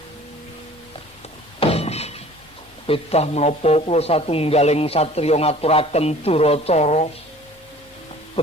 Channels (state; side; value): normal; both; correlation 0.48